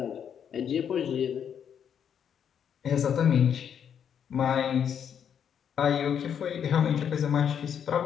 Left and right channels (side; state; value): right; quieter; 8.3 dB